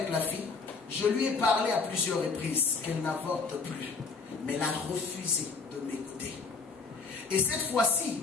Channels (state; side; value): quieter; right; 4.6 dB